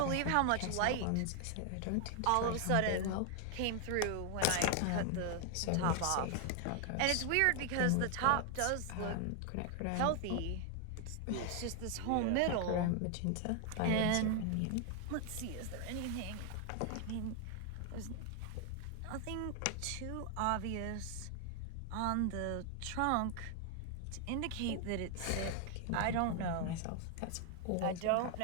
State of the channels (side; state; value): both; different; correlation 0.00